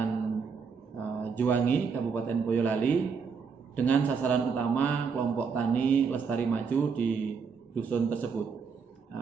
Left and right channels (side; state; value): left; quieter; 5.8 dB